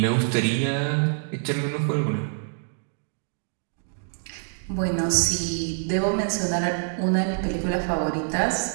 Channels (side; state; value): left; silent; digital silence